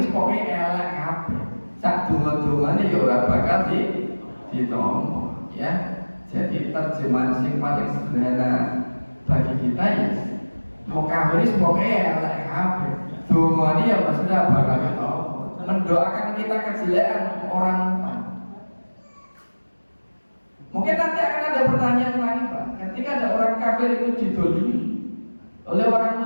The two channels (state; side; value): inverted; both; correlation -1.00